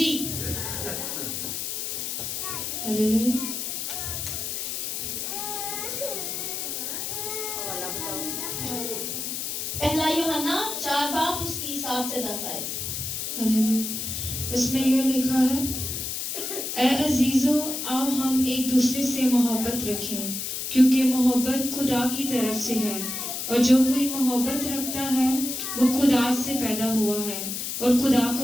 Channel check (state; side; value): noise; left; hiss, 4 dB below the sound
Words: पहला यूहन्ना 4 बाब उसकी 7 से 10 आयत। उसमें यह लिखा है, ऐ अजीजों, आओ हम एक दूसरे से मोहब्बत रखें, क्योंकि मोहब्बत खुदा की तरफ से है, और जो कोई मोहब्बत रखता है वो खुदा से पैदा हुआ है और खुदा